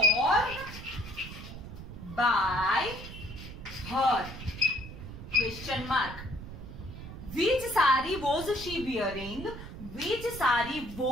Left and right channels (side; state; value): right; noise; rumble, 12 dB below the sound